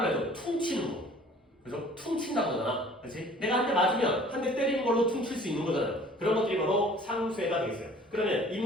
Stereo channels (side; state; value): both; normal; correlation 0.51